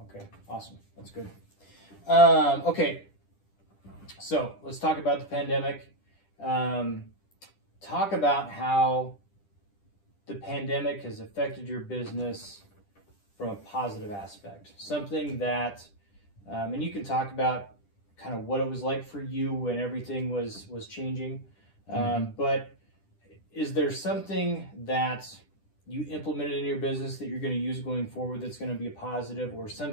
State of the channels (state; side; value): late; right; 10 ms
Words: Okay, awesome. That's good. Okay, so let's talk about the pandemic. Talk about how the pandemic has affected your business from a positive aspect. Something that, and you can talk about kind of what it was like for you when everything was changing. But is there something that you implemented in your business that you're going to use going forward that's going to be a positive, or